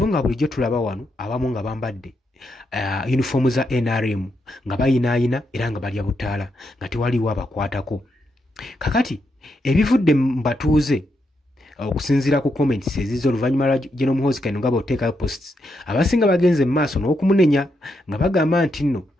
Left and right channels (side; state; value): both; normal; correlation 0.81